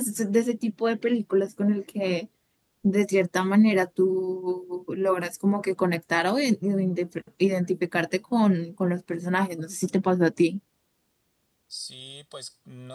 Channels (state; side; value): identical; both; correlation 1.00